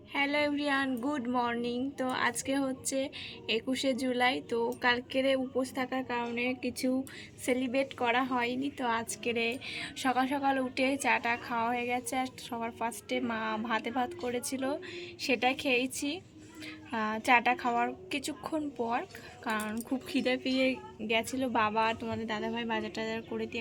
Hello everyone, good morning. তো আজকে হচ্ছে 21শে জুলাই। তো কালকেরে উপোস থাকার কারণে কিছু সেলিব্রেট করা হয়নি। তো আজকেরে সকাল সকাল উঠে চাটা খাওয়া হয়ে গেছে। আর সবার ফার্স্টে মা ভাত করেছিল, সেটাই খেয়েছি। চাটা খাওয়ার কিছুক্ষণ পর, কারণ খুব খিদে পেয়ে গেছিলো। বাবা তোমাদের দাদাভাই বাজার টাজার করে দিয়ে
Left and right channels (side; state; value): both; identical; correlation 1.00